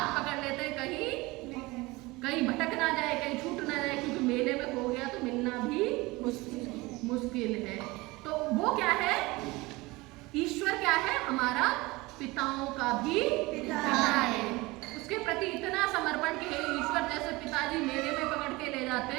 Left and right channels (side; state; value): left; quieter; 22.1 dB